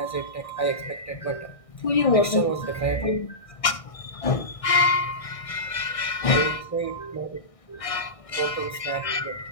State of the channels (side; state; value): right; late; 1.6 ms